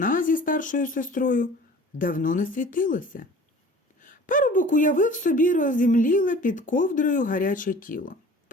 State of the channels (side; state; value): both; normal; correlation 0.45